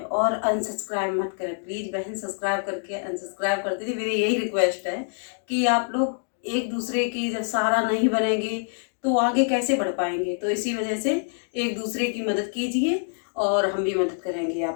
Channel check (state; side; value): silent; right; 61 dB below the other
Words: और अनसब्सक्राइब मत करें प्लीज़ बहन, सब्सक्राइब करके अनसब्सक्राइब कर दीजिए। मेरी यही रिक्वेस्ट है कि आप लोग एक दूसरे की जब सहारा नहीं बनेंगे तो आगे कैसे बढ़ पाएंगे। तो इसी वजह से एक दूसरे की मदद कीजिए और हम भी मदद करेंगे